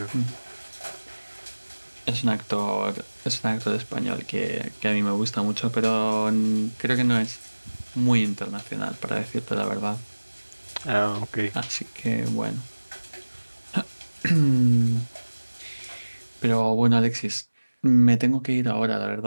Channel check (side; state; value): both; inverted; correlation -1.00